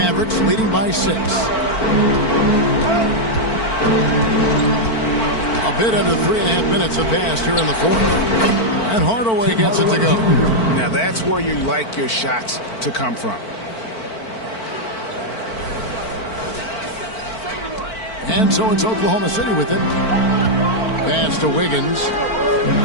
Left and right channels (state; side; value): late; right; 4.5 ms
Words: leading by 6. A bit under 3.5 minutes have passed here in the fourth. And Hardaway gets it to go. Now that's where you like your shots to come from. And so it's Oklahoma City with it. Pass to Wiggins.